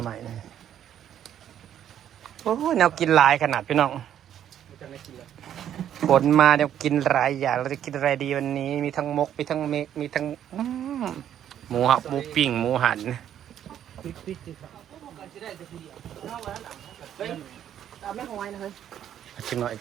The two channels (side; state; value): left; quieter; 10.3 dB